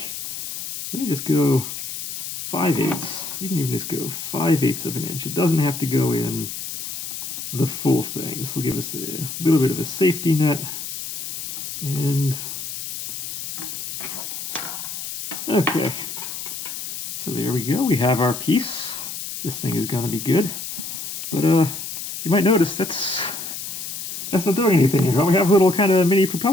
Let me just go 5/8. We can even just go 5/8 of an inch. It doesn't have to go in the full thing. This will give us a little bit of a safety net. And okay, so there we go. We have our piece. This thing is going to be good. But you might notice that's not doing anything here. We have a little kind of mini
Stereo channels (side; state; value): left; noise; hiss, 7 dB below the sound